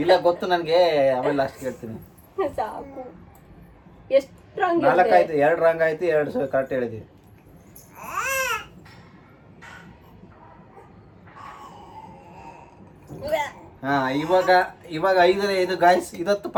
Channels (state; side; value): identical; both; correlation 1.00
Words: ಇಲ್ಲ ಗೊತ್ತು ನನಗೆ, ಆಮೇಲೆ ಲಾಸ್ಟಿಗೆ ಹೇಳ್ತೀನಿ. ಸಾಕು. ಎಷ್ಟು ರಾಂಗ್? 4 ಆಯ್ತು, 2 ರಾಂಗ್ ಆಯ್ತು, 2 ಕರೆಕ್ಟ್ ಹೇಳಿದ್ವಿ. ಇವಾಗ 5 ಗಾಯ್ಸ್. ಇದತ್ತು